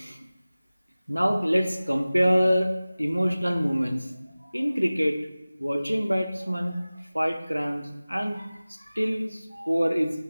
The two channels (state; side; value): inverted; both; correlation -0.98